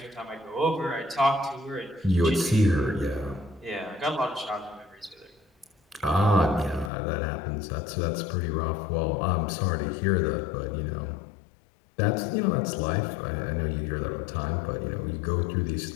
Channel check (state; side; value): drops out; right; at 6.9 s